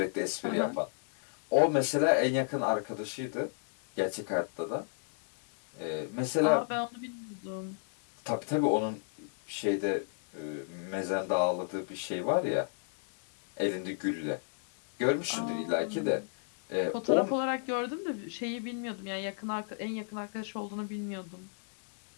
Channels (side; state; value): right; silent; digital silence